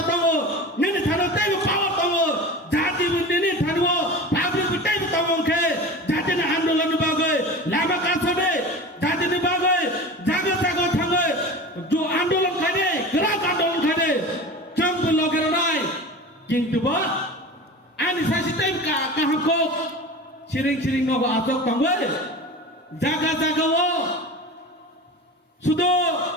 दङ निनि थानो तैबो पावर दङ जातिबो निनि थानो पाब्लिक तैबो दङखे जातिनि आंदोलन बागै लामा कासने जातिनि बागै जागा जागा थाङै जो आंदोलन खाने ग्राक आंदोलन खाने जोंबो लगेर नाय किन्तुबा आनि सासे टाइम काहामखौ सिरिं नगो आजक दङै जागा जागाव सुदो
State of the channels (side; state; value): both; normal; correlation 0.33